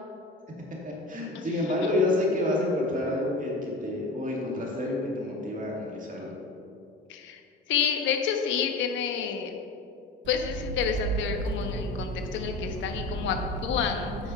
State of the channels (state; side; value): quieter; right; 3.1 dB